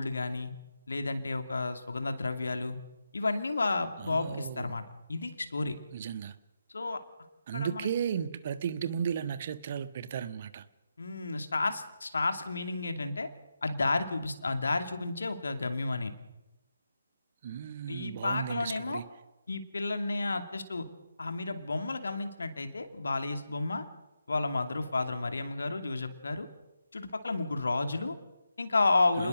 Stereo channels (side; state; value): both; inverted; correlation -0.87